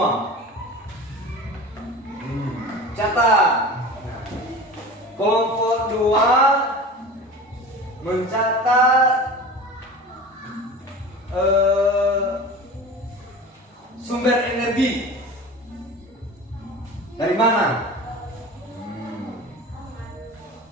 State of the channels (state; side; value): normal; both; correlation 0.35